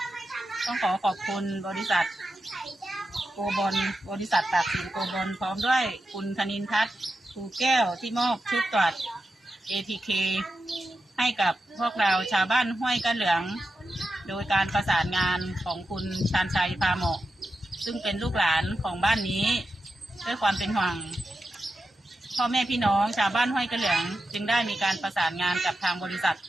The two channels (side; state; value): both; normal; correlation 0.89